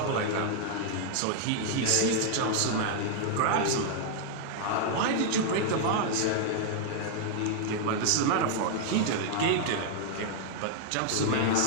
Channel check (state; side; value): different; both; correlation -0.01